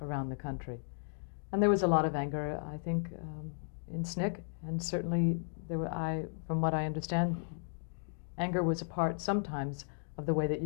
around the country. And there was a lot of anger, I think, in SNCC, and certainly from what I understand, anger was a part sometimes of the way that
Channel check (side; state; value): right; silent; digital silence